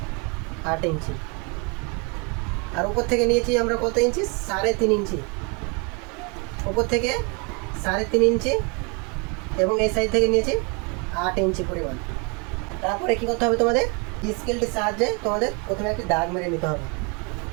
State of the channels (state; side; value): quieter; left; 32.6 dB